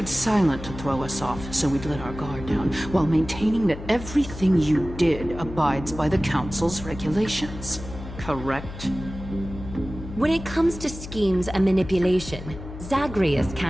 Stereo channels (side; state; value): left; noise; hum, 12 dB below the sound